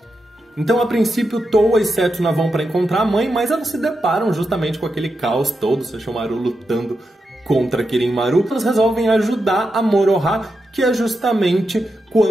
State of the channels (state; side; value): normal; both; correlation 0.87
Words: Então, a princípio, Towa e Setsuna vão para encontrar a mãe, mas elas se deparam justamente com aquele caos todo, Sesshomaru lutando contra Kirin-Maru. Elas resolvem ajudar a Moroha, que é justamente